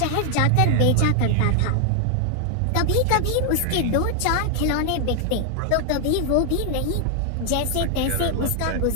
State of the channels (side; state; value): both; different; correlation 0.00